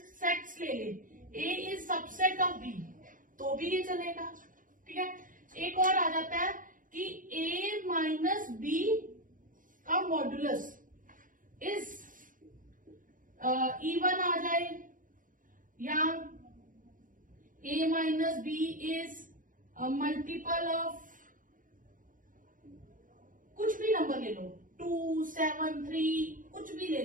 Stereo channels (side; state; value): left; late; 0.39 ms